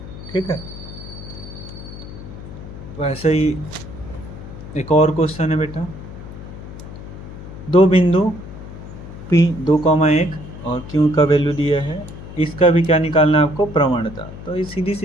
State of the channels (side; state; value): left; noise; hum, 12 dB below the sound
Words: ठीक है। वैसे ही एक और क्वेश्चन है बेटा, दो बिंदु P 2,1 और Q का वैल्यू दिया है, इसका भी क्या निकालना है आपको, प्रवणता। तो ये सीधी